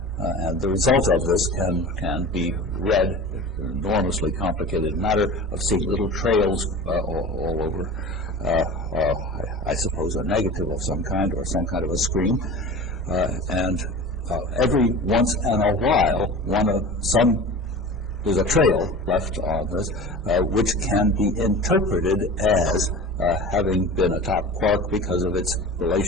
And the result of this can be read, an enormously complicated matter of seeing little trails all over, I suppose, a negative of some kind or some kind of a screen. And every once in a while, there's a trail left on this, which can be interpreted as having been a top quark because of its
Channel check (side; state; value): both; normal; correlation 0.35